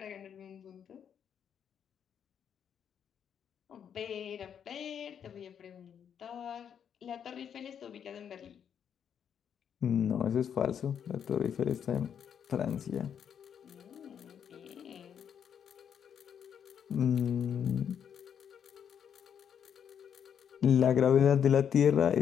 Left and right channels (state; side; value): quieter; right; 8.2 dB